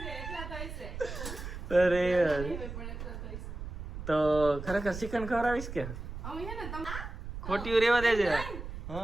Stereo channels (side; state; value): right; noise; rumble, 8 dB below the sound